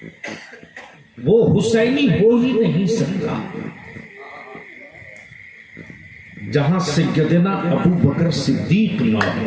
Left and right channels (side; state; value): both; identical; correlation 1.00